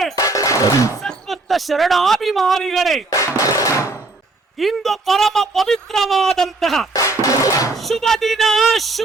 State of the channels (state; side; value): quieter; left; 3.3 dB